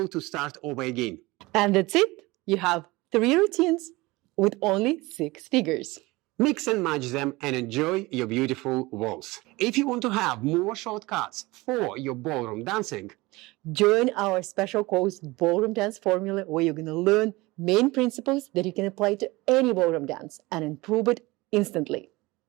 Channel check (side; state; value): left; quieter; 21.8 dB